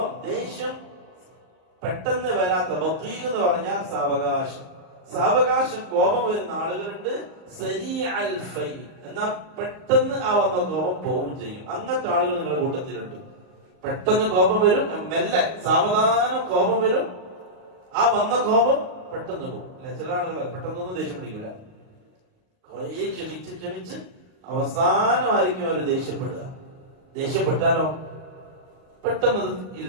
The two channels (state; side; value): late; left; 38 ms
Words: ദേഷ്യം പെട്ടെന്ന് വരാത്ത, ബഖീ എന്ന് പറഞ്ഞാൽ സാവകാശം കോപം വരുന്ന ആളുകളുണ്ട്. സരീഅൽ ഫൈ, എന്നാൽ പെട്ടെന്ന് ആ വന്ന കോപം പോവും ചെയ്യും. അങ്ങനത്തെ ആളുകൾ നിങ്ങളുടെ കൂട്ടത്തിലുണ്ട്. പെട്ടെന്ന് കോപം വരും, മെല്ലെ സാവധാനം കോപം വരും, ആ വന്ന കോപം പെട്ടെന്ന് പോകും. അല്ലെ, ചില ആളുകൾ പെട്ടെന്നൊന്നും ദേഷ്യം പിടിക്കൂല, കുറെ ക്ഷമിച്ച് അവസാനമായിരിക്കും അവർ ദേഷ്യപ്പെട്ടാലോ പെട്ടെന്ന്